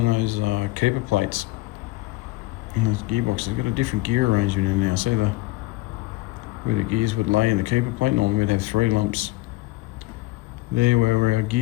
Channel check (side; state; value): right; quieter; 20.2 dB